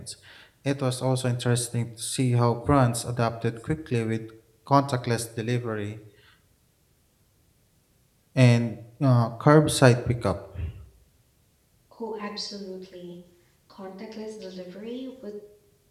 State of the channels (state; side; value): identical; both; correlation 1.00